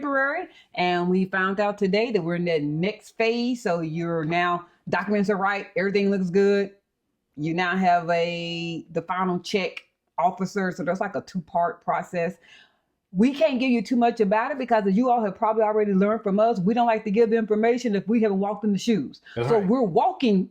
And we found out today that we're in the next phase. So you're now, documents are right, everything looks good. You now have the final check officer. So there's like a 2-part process. We can't give you too much about it because as you all have probably already learned from us, we don't like to give information if we haven't walked in the shoes. That's right. We're walking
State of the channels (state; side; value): identical; both; correlation 1.00